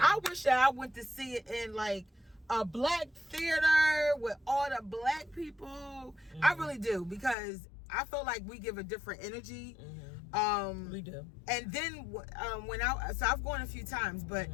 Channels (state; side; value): drops out; right; at 7.4 s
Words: I wish that I went to see it in like a black theater with all the black people. Mm-hmm. I really do, because I feel like we give a different energy. Mm-hmm. We do. And then I've gone a few times, but